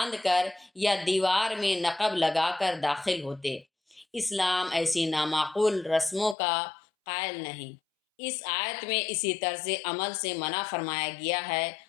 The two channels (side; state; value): right; drops out; at 6.4 s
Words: کر یا دیوار میں نقب لگا کر داخل ہوتے۔ اسلام ایسی نامعقول رسموں کا قائل نہیں۔ اس آیت میں اسی طرز عمل سے منع فرمایا گیا ہے